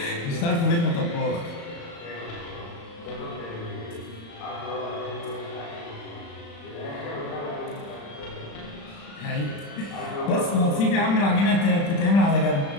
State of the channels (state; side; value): late; right; 35 ms